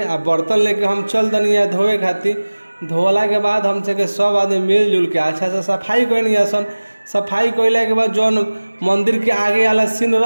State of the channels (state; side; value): inverted; both; correlation -1.00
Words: आ बर्तन लेके हम चल दनी धोए खातिर। धोला के बाद हम सब आदमी मिलजुल के अच्छा से सफाई कैनी आसन। सफाई कैला के बाद जौन मंदिर के आगे वाला सीन